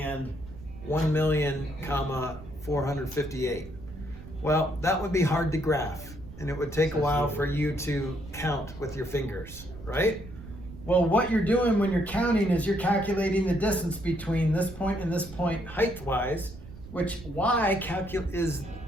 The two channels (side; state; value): right; noise; rumble, 16 dB below the sound